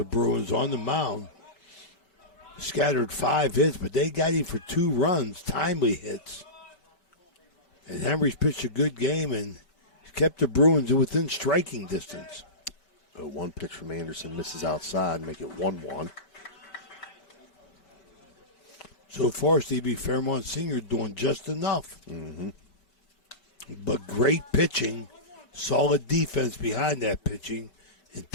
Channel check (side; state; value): right; late; 4.8 ms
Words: Bruins on the mound. Scattered 5 hits, but they got him for 2 runs, timely hits. And Henry's pitched a good game and kept the Bruins within striking distance. 0-1 pitch from Anderson, misses outside, make it 1-1. So far, Stevie, Fairmont Senior doing just enough. Mm-hmm. But great pitching, solid defense behind that pitching, and